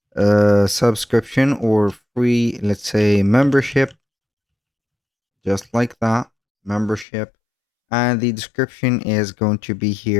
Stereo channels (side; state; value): right; drops out; at 7.1 s